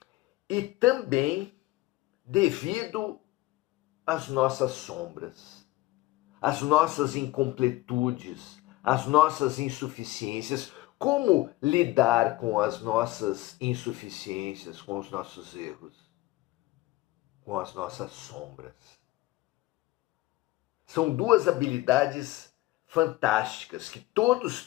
E também devido às nossas sombras, às nossas incompletudes, às nossas insuficiências. Como lidar com as nossas insuficiências, com os nossos erros, com as nossas sombras? São duas habilidades fantásticas que todos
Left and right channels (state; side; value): quieter; right; 18.7 dB